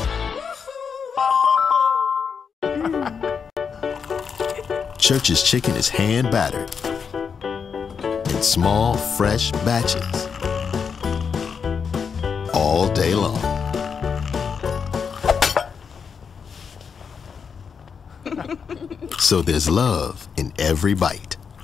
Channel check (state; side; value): quieter; right; 6.3 dB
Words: Church's chicken is hand battered in small, fresh batches all day long. So there's love in every bite.